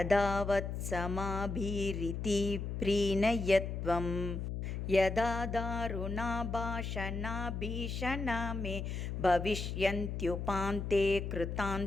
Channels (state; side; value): noise; left; hum, 4 dB below the sound